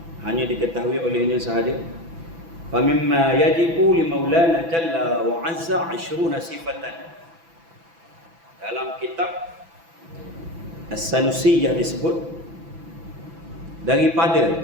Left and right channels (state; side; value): late; left; 6.0 ms